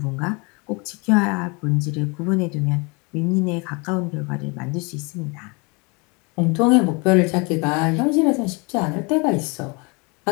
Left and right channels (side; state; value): right; quieter; 29.8 dB